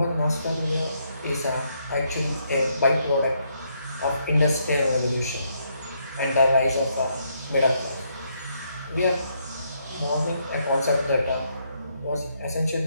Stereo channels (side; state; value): both; inverted; correlation -0.75